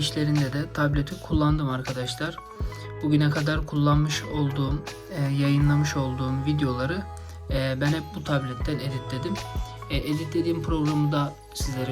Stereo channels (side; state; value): both; identical; correlation 1.00